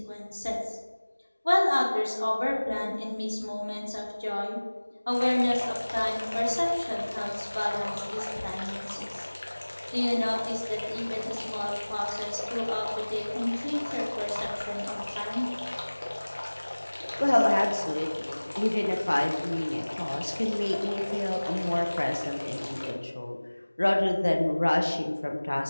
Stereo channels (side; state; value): both; inverted; correlation -1.00